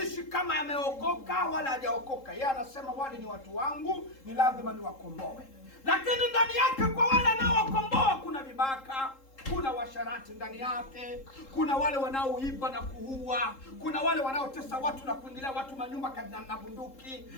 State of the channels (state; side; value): late; right; 3.7 ms